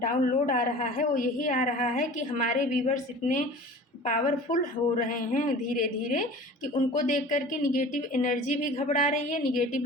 आ रहा है वो यही आ रहा है कि हमारे व्यूवर्स इतने पावरफुल हो रहे हैं धीरे धीरे कि उनको देख करके निगेटिव एनर्जी भी घबरा रही है, निगेटिव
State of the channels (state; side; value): normal; both; correlation 0.41